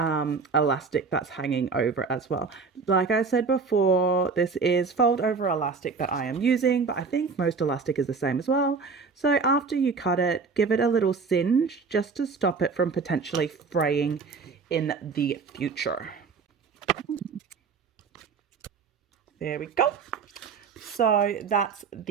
that's hanging over as well. Like I said before, this is fold over elastic that I am using, but I think most elastic is the same as well. So after you cut it, give it a little singe just to stop it from potentially fraying in the future. There we go. So that's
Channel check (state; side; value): quieter; left; 4.9 dB